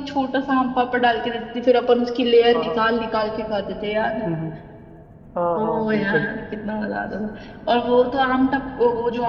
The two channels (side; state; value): both; identical; correlation 1.00